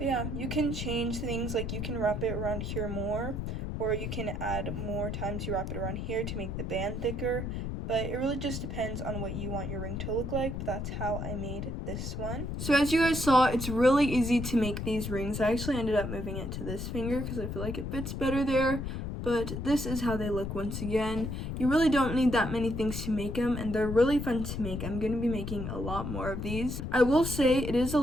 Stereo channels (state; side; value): noise; left; rumble, 4 dB below the sound